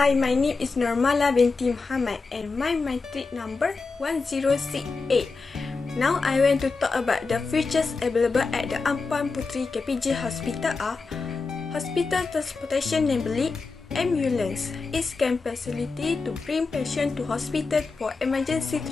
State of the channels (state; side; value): quieter; right; 4.3 dB